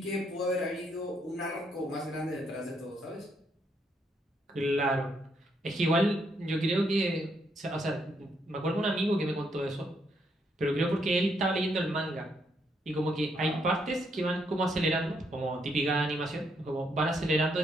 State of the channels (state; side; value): normal; both; correlation 0.75